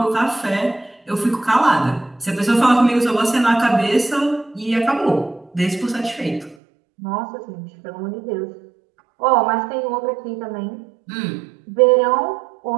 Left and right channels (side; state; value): left; drops out; at 6.6 s